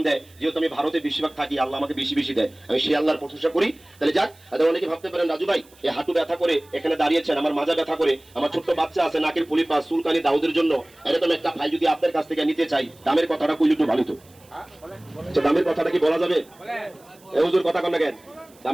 দেয়, যেহেতু আমি ভারতে বেশিরভাগ থাকি, আল্লাহ আমাকে বেশি বেশি দেয়, আমি সেই আল্লাহর প্রশংসা করি। তাহলে যাক, অনেকে ভাবতে পারেন রাজু ভাই এই হাঁটু ব্যথা করে এখানে দাঁড়িয়েছেন, আমার মাজা ব্যথা করে, আমার ছোট্ট বাচ্চা আছে নাকের পুলি পাস চুলকানি দাউদের জন্য এরকম একটা ফাইল যদি আপনার কাছ থেকে নিতে চাই, দামের কথাটা কইলে একটু ভালো তো। দামের কথাটা কি বলা যাবে? এই হুজুর কথা কন না কেন?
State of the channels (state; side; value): noise; right; hiss, 28 dB below the sound